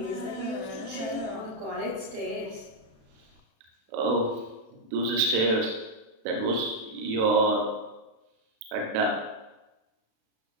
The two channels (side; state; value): left; late; 36 ms